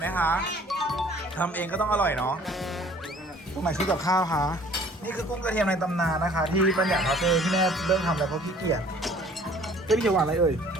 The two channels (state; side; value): normal; both; correlation 0.54